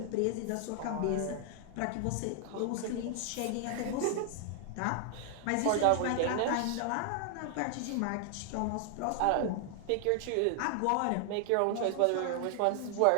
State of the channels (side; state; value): both; different; correlation 0.00